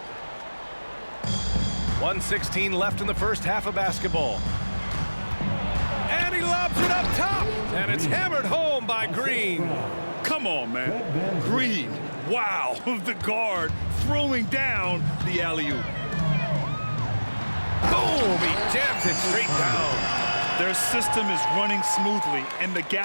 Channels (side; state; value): both; inverted; correlation -1.00